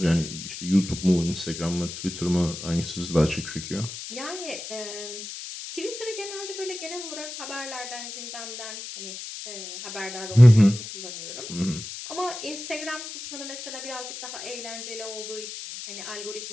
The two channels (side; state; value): left; noise; hiss, 9 dB below the sound